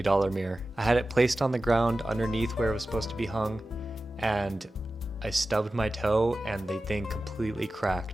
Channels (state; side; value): normal; both; correlation 0.94